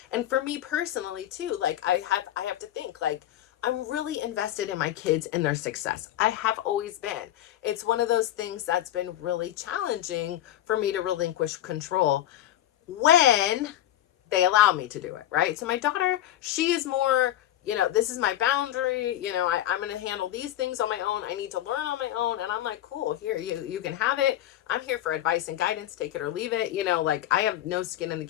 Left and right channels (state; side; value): quieter; right; 13.1 dB